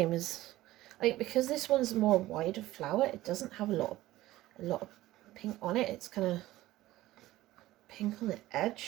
as, like, because this one's more wider flower, it doesn't have a lot of pink on it. It's kind of pink on the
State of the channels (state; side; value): quieter; left; 16.3 dB